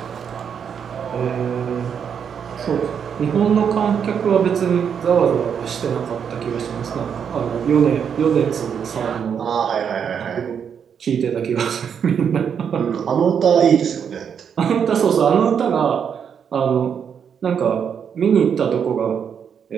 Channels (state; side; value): quieter; left; 7.5 dB